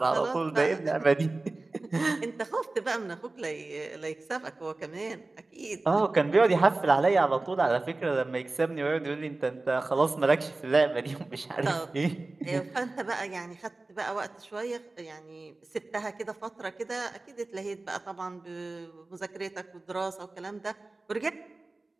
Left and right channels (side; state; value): left; quieter; 3.2 dB